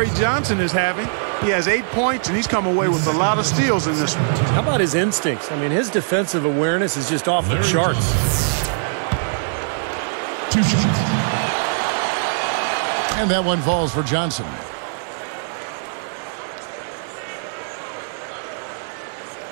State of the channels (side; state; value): left; silent; digital silence